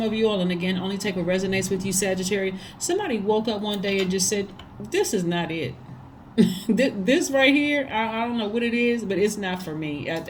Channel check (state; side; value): identical; both; correlation 1.00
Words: of you all, and again, only take what resonates with you, Sagittarius, somebody woke up one day and just said, this is not it. This right here, I don't know what it is, but it's not for me.